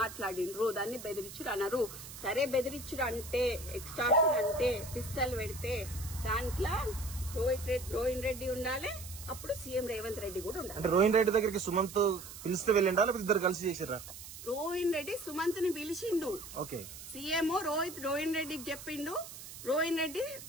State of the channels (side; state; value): right; noise; hiss, 13 dB below the sound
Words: దాన్ని బెదిరించుడు అన్నారు. సరే, బెదిరించుడు అంటే, ఎక్స్టార్షన్ అంటే, పిస్తల్ పెడితే దాంట్లో రోహిన్ రెడ్డి ఉండాలి, అప్పుడు సీఎం రేవంత్ రెడ్డి కూడా ఉండాలి. అంటే రోహిన్ రెడ్డి దగ్గరికి సుమంత్ పిలిస్తే వెళ్ళిండా, లేకపోతే ఇద్దరు కలిసి చేసిర్రా? రోహిన్ రెడ్డి సుమంత్ ని పిలిచిండు. ఓకే, సీఎం రోహిన్ రెడ్డికి చెప్పిండు, రోహిన్ రెడ్డి